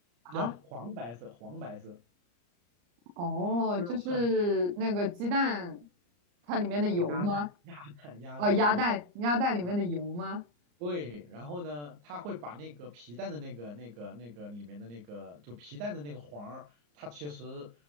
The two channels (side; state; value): left; late; 34 ms